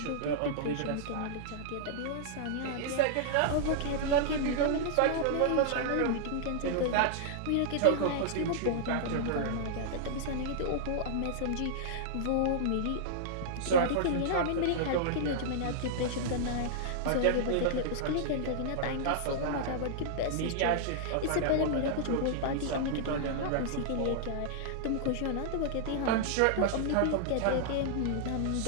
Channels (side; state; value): both; different; correlation -0.02